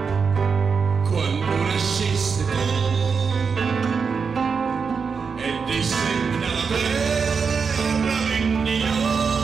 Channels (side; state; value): left; quieter; 5.6 dB